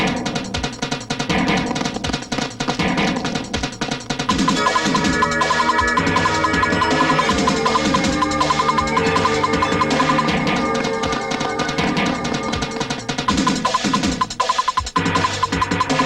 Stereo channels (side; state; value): both; identical; correlation 1.00